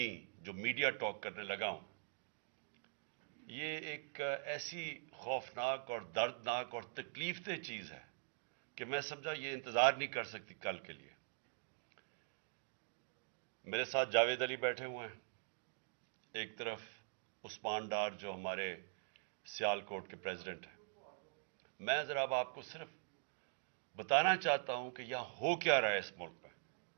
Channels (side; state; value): left; silent; digital silence